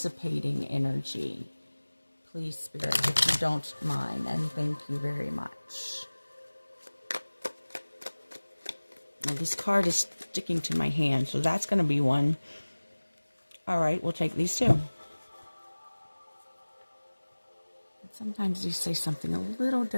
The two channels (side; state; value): both; inverted; correlation -1.00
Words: energy. Please, Spirit, if you don't mind, and thank you very much. Now, this card is sticking to my hand, so that's going to be one. All right, we'll take these two. Sometimes you say something a little